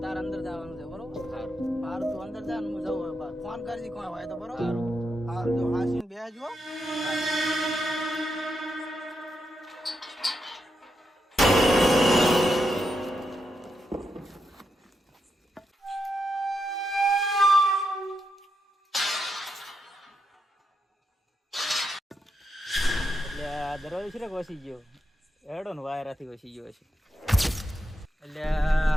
તાર અંદર જવાનું છે બરોબર? સારું. મારું તું અંદર જા ને હું જઉં હવે બહાર. ફોન કરજી કોઈ હોય તો બરોબર? સારું. હારું જો હાસીને બેસજો. એટલે આ દરવાજો છે ને વસી ગયો હેડો ને વાયરાથી વસી ગયો છે. એટલે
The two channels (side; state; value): both; normal; correlation 0.84